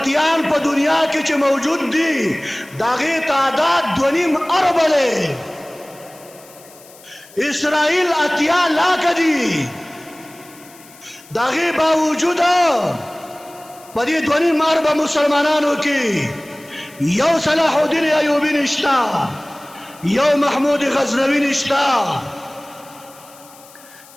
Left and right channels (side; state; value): left; noise; hiss, 23 dB below the sound